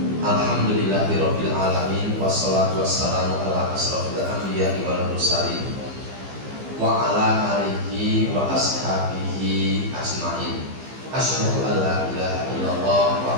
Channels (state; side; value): late; left; 15 ms